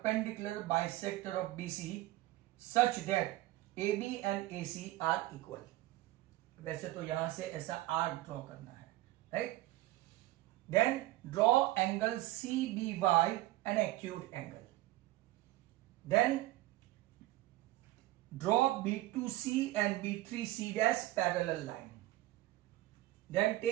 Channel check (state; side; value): quieter; left; 17.0 dB